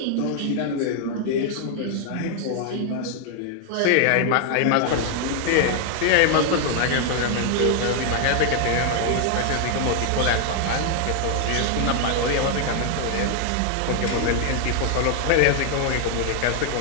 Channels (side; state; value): both; different; correlation 0.00